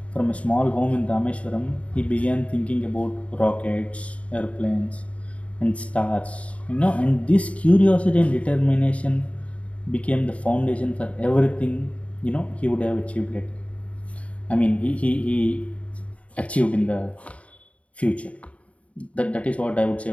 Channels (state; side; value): late; right; 0.065 ms